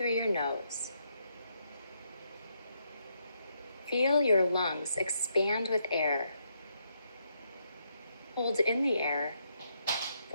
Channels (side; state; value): both; inverted; correlation -0.77